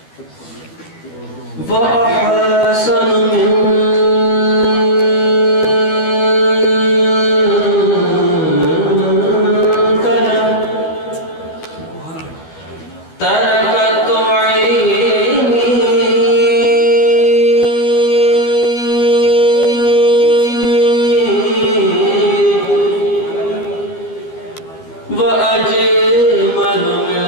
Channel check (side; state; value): right; late; 12 ms